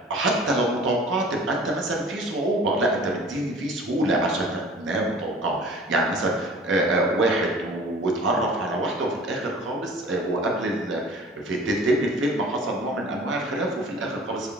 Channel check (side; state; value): both; normal; correlation 0.46